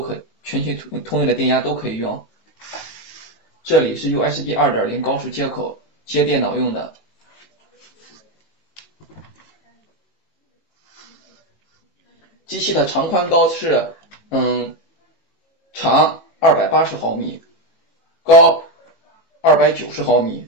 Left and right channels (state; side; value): late; right; 18 ms